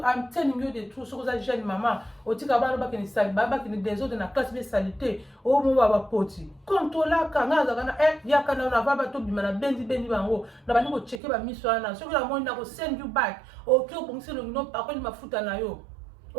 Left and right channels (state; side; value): drops out; left; at 11.2 s